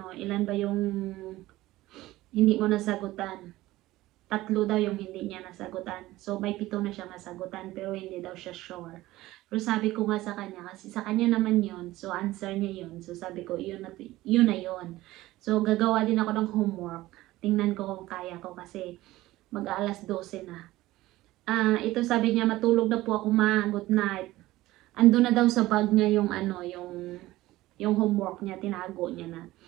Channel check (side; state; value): left; quieter; 17.2 dB